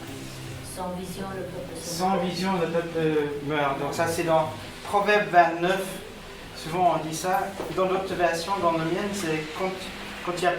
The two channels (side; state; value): both; identical; correlation 1.00